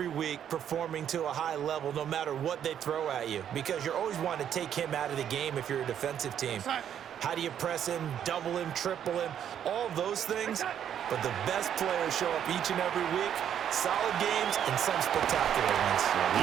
week performing to a high level no matter what they throw at you, because you're always wanting to take him out of the game if you're a defensive team. How do you press him, double him, triple him, all of those things? But the best players show up each and every week. Solid games and some spectacular ones.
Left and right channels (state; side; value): quieter; left; 9.4 dB